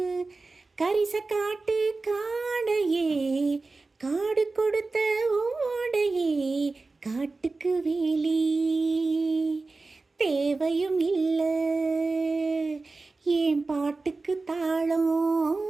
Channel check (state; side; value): quieter; left; 3.6 dB